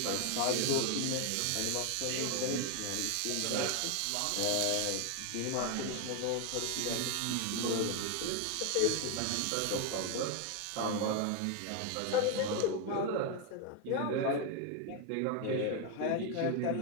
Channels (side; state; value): both; different; correlation 0.01